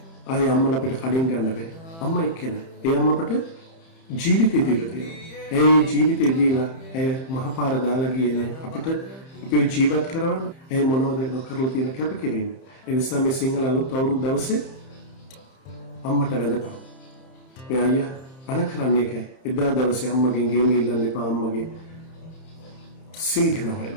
ආයේ අම්මලා අපිට කඩින් ගන්න බෑ. අම්මා එක්කෙනා. ඒ අම්මා අපට ජීවිතය දීලා තියෙනවා. ඒ ජීවිතය දීලා ඇය මහපාර දාලා ගියේ නේ අපිට අපිව ජීවත් කරවන්න. ඒ මොනවද කරලා තියෙන කැපකිරීම. ඒ නිසා මේ සිංහල අලුත් අවුරුදු දවසේ අම්මට වැඳපන්. මේ අයියා අන කරන්නේ කෑ. එදා දවසේ අම්මගෙන් ගේම ඉල්ලන්න එපා අම්මගේ සිංහන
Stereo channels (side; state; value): right; late; 30 ms